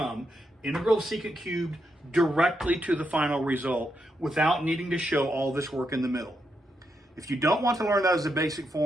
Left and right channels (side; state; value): both; normal; correlation 0.82